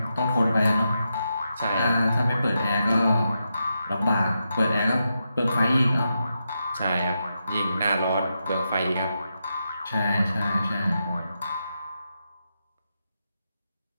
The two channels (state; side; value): inverted; both; correlation -0.86